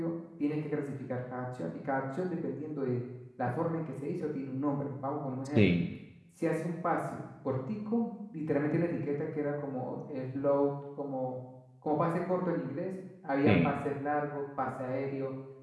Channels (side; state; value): both; identical; correlation 1.00